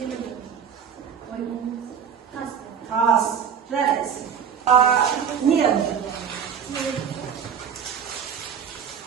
тас. Тас. Жарайсың. Не?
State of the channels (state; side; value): quieter; left; 7.5 dB